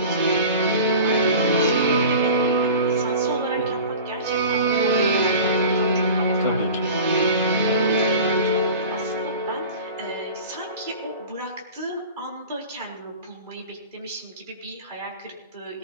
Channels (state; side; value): inverted; both; correlation -0.38